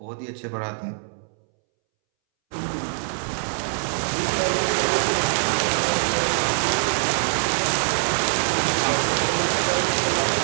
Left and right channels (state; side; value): silent; left; 63 dB below the other